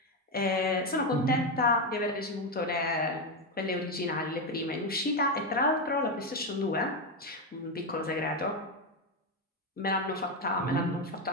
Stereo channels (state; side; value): normal; both; correlation 0.09